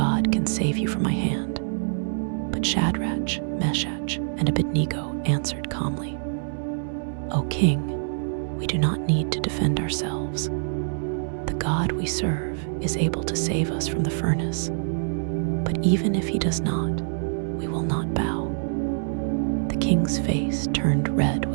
can save you from my hand. But Shadrach, Meshach, and Abednego answered calmly. O king, we do not need to defend ourselves. The God we serve is able to save us from the furnace. But even if he does not, we will not bow. The king's face turned red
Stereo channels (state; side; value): silent; left; digital silence